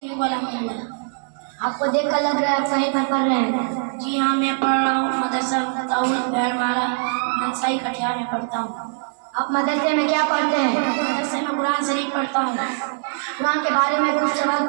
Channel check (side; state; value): left; silent; digital silence